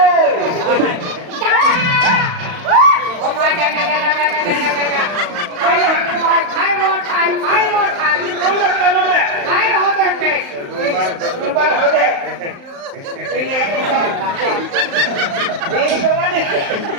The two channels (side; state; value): left; late; 35 ms